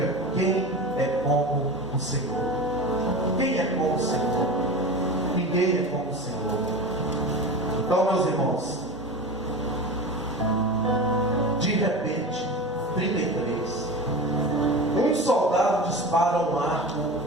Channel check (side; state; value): both; normal; correlation 0.29